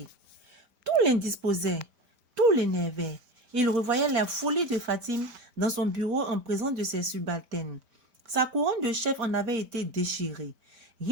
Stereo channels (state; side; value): late; left; 5.0 ms